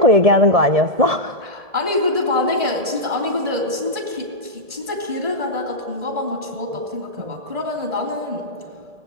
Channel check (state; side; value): late; left; 1.8 ms